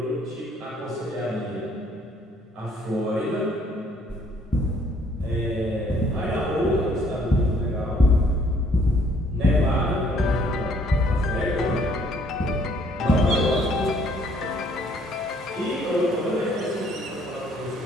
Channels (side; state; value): both; normal; correlation 0.63